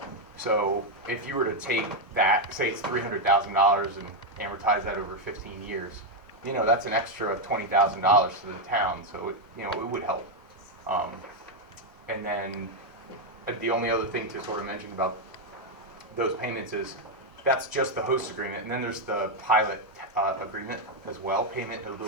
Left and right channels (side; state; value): both; normal; correlation 0.02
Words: So if you were to take that, say it's $300,000 and amortize that over 15 years, that's an extra $20,000 to the town. So it would help. And then the only other thing to sort of mention about those payments is that's just the host agreement, and then there's the pilot agreement as well, payment in